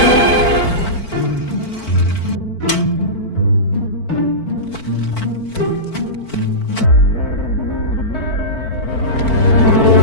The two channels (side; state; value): right; late; 4.5 ms